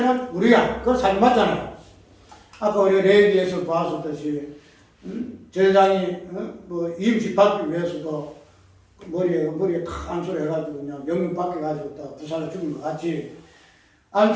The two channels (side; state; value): both; identical; correlation 1.00